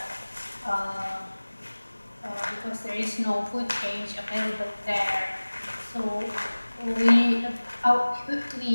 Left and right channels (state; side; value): inverted; both; correlation -1.00